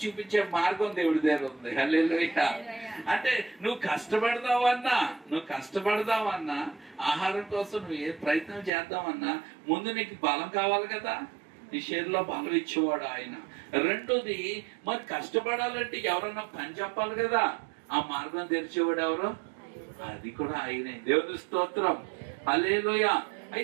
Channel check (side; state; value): left; drops out; at 8.7 s